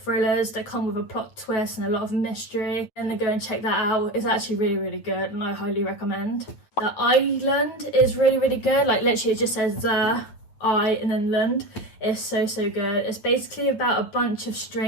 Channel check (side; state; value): right; late; 9.1 ms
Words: that come with a plot twist and a lot of mystery, then go and check that out. It's actually really good, and I highly recommend. The island is really, really good. Like literally it just says the I and then land. It's so good. It's basically about a bunch of